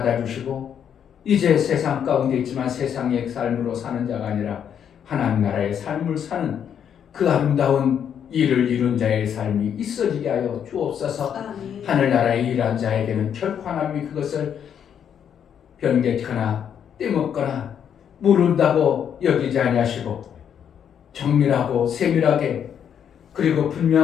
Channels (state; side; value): quieter; right; 8.5 dB